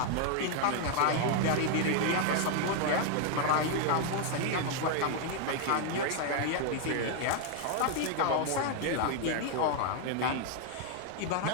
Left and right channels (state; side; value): different; both; correlation 0.00